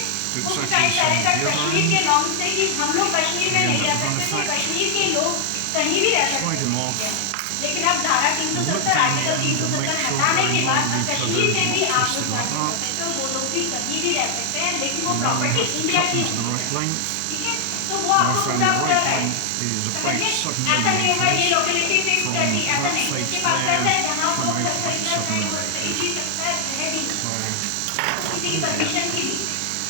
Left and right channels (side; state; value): both; different; correlation 0.00